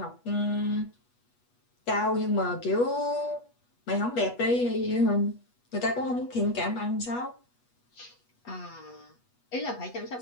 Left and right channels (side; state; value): right; late; 8.3 ms